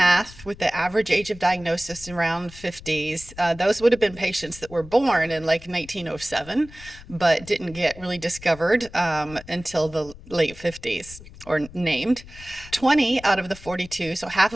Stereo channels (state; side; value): noise; left; rumble, 18 dB below the sound